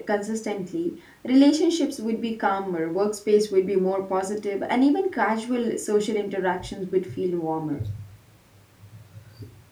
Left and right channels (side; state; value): both; identical; correlation 1.00